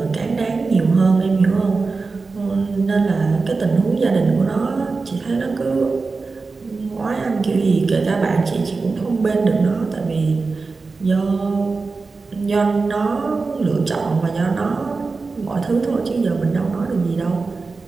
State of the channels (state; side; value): quieter; left; 4.1 dB